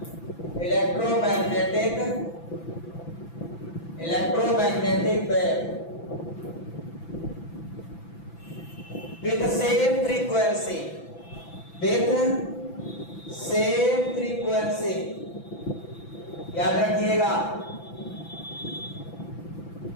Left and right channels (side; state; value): right; late; 6.0 ms